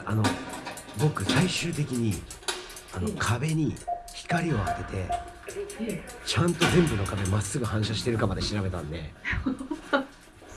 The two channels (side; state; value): both; identical; correlation 1.00